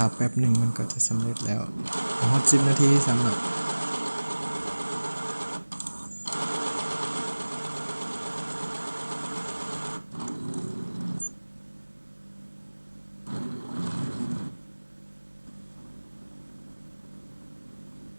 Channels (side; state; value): both; inverted; correlation -1.00